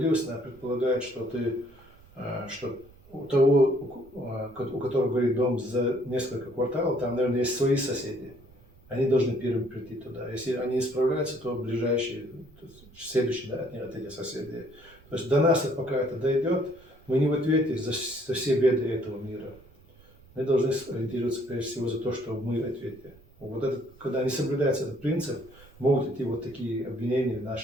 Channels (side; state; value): right; noise; rumble, 25 dB below the sound